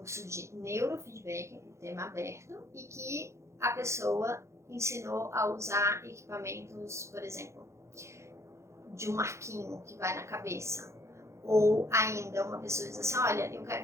de neurofeedback, um tema aberto, e que a pessoa ensinou a usar equipamentos, por exemplo, de um arquinho que vai na cabeça. Ou ainda uma pessoa diz assim, olha, eu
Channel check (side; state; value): left; late; 0.14 ms